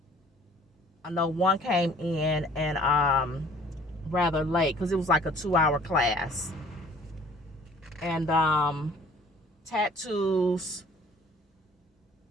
I know one came in and rather late because it was like a 2-hour class, and tattoos,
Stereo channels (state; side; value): normal; both; correlation 0.53